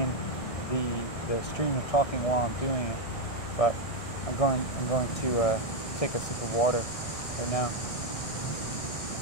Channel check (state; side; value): late; right; 1.6 ms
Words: the stream of talking while I'm doing it, but I'm going to take a sip of water right now.